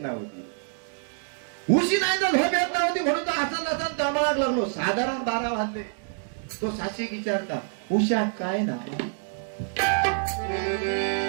नव्हती, उशी नाही तर झोप येत नव्हती म्हणून तो असं नसन तळमळाक लागलो. साधारण 12 वाजले. तो साक्षी विचारता उषा काय ना,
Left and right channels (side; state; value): left; silent; digital silence